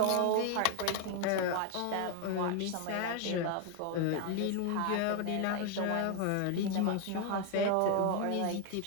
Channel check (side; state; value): both; different; correlation 0.00